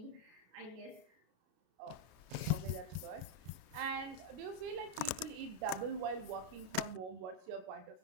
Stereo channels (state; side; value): late; left; 33 ms